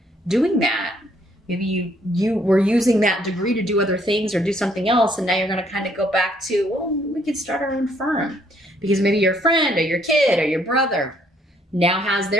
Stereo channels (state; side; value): normal; both; correlation 0.67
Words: doing that. Maybe you were using that degree to do other things or do something else, and now you're going to kind of go back to, we could start our own firm, because maybe your friend or your kid or your brother now has